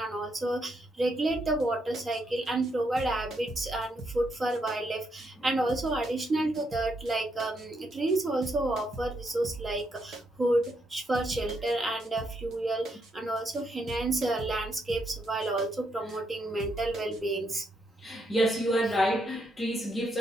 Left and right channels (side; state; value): both; normal; correlation 0.78